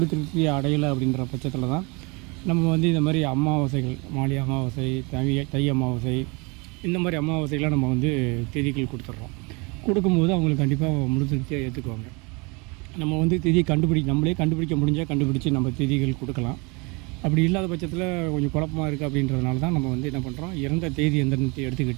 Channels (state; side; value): quieter; left; 28.8 dB